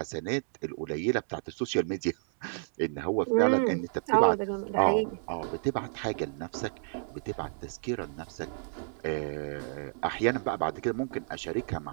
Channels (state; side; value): silent; left; 57 dB below the other